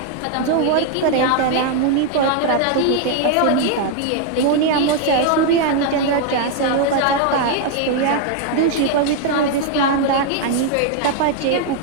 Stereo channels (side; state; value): both; different; correlation 0.00